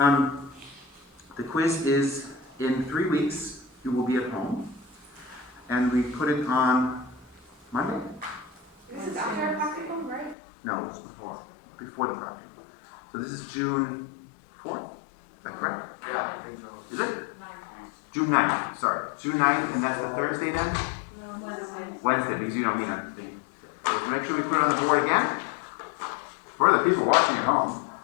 The quiz is in 3 weeks. You will be at home. And we put it on Monday. This is after our practicum, right? No, it's before. Before the project. So this is June 4th? Is that correct? Yeah, I think so. Is it? June 9th, sorry. June 9th, and that's the Thursday then? No, Wednesday, because you don't meet on the thing. So make sure we put it on the board again. For the people watching at home.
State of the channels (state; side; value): drops out; right; at 10.4 s